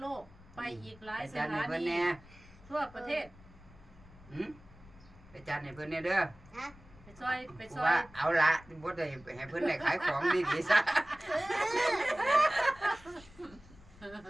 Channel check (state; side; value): noise; left; rumble, 22 dB below the sound